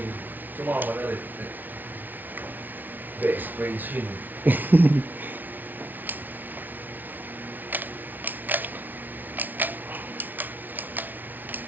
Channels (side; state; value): left; late; 0.084 ms